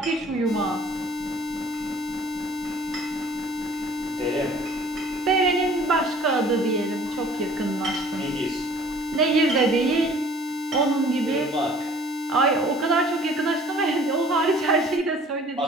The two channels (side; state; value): both; normal; correlation 0.52